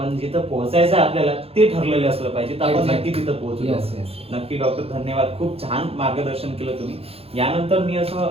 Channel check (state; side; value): late; left; 0.29 ms